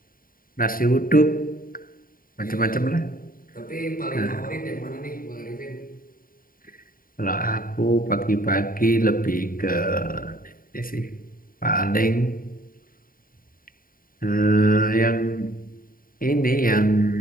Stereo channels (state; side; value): late; right; 0.41 ms